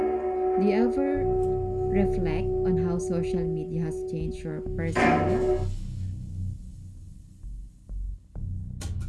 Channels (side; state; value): both; identical; correlation 1.00